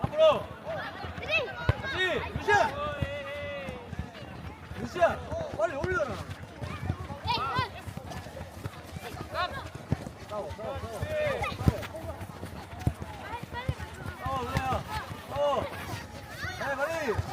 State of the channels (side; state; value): both; identical; correlation 1.00